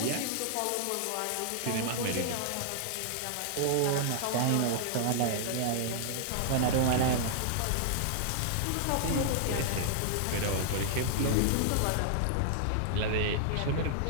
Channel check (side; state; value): both; different; correlation -0.01